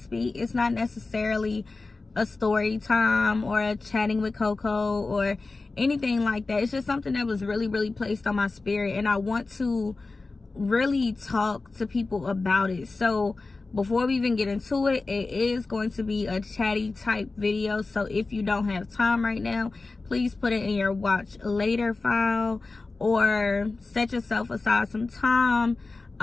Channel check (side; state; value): right; quieter; 3.6 dB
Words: It's not necessarily a story time or a chatting with Coco or anything like that. It's just something that was really placed on my spirit, and I want to really talk to people about it. So before we even get into it, it is going to be a chatty type video. So if you don't have time right now, please put it in your watch later file or set yourself aside some time,